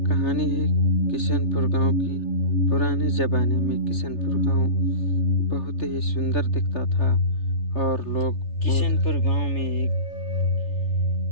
है किशनपुर गांव की। पुराने ज़माने में किशनपुर गांव बहुत ही सुंदर दिखता था और लोग किशनपुर गांव में एक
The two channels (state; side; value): late; right; 3.3 ms